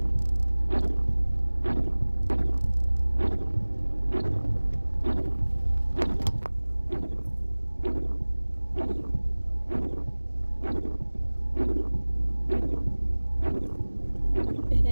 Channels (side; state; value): both; inverted; correlation -1.00